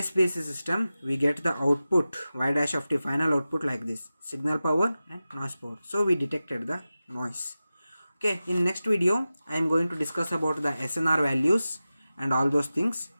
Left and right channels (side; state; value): both; inverted; correlation -0.95